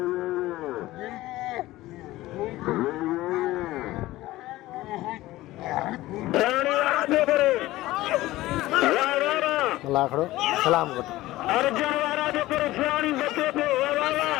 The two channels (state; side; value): quieter; right; 17.1 dB